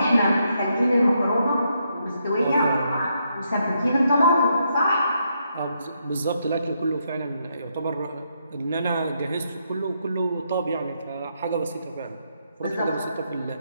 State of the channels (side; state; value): both; inverted; correlation -0.78